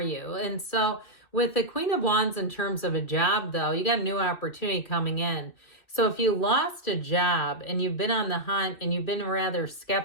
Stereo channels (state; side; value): late; right; 2.6 ms